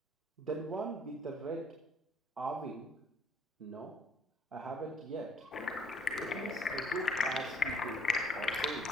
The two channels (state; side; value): normal; both; correlation 0.61